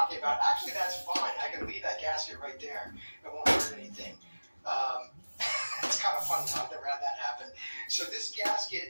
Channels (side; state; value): both; inverted; correlation -1.00